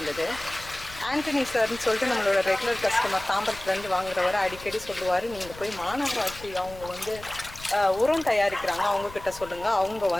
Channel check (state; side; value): noise; left; rumble, 17 dB below the sound